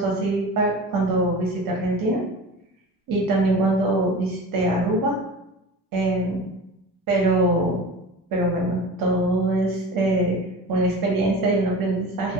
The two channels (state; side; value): normal; both; correlation 0.34